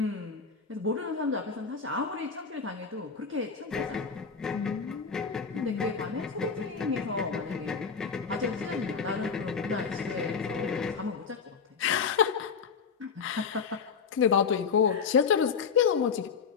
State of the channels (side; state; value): right; quieter; 5.8 dB